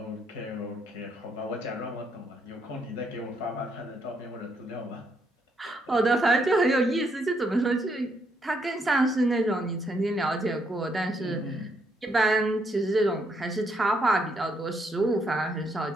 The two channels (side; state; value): both; normal; correlation 0.74